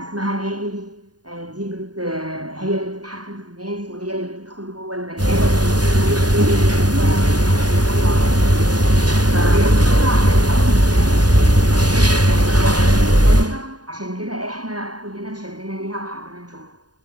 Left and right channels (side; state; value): left; late; 0.69 ms